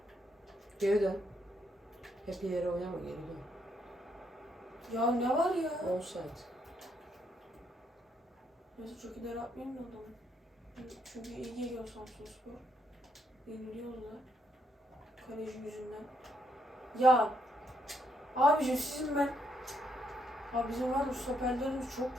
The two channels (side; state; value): both; normal; correlation 0.75